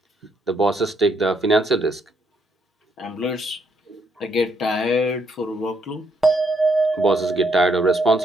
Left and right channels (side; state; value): both; normal; correlation 0.73